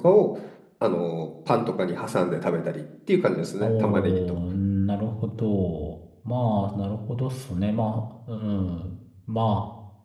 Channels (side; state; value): both; identical; correlation 1.00